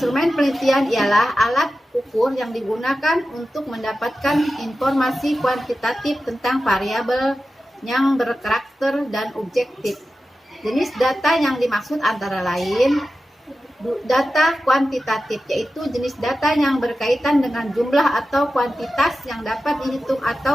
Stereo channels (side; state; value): both; normal; correlation 0.93